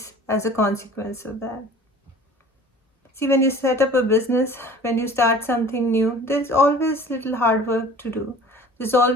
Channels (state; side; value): normal; both; correlation 0.45